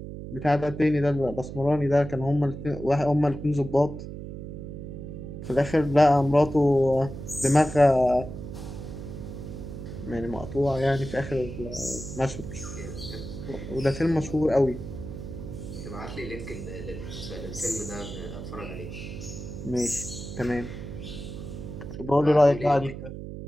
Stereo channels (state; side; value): noise; right; hum, 9 dB below the sound